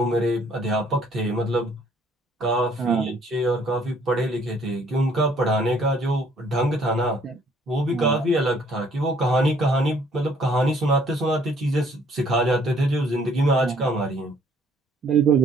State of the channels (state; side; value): normal; both; correlation 0.62